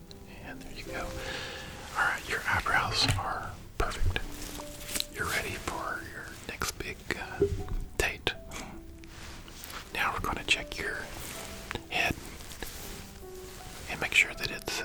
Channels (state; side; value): identical; both; correlation 1.00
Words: And there you go. Alright, your eyebrows are perfect. You're ready for your next big date. Now we're going to check your head and make sure that